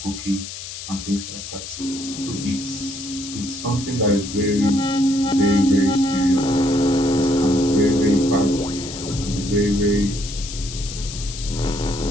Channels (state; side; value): noise; left; hiss, 10 dB below the sound